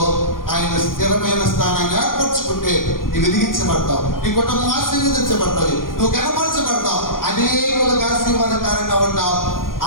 ఆయన స్థిరమైన స్థానాన్ని ఏర్పరచుకుంటాడు. సంతోషపడితే నువ్వు వెలిగించబడతావు, నీ కుటుంబం ఆశీర్వదించబడతావు, నువ్వు కనపరచబడతావు, అనేకులకు ఆశీర్వాదకారంగా ఉంటావు.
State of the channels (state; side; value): late; right; 0.91 ms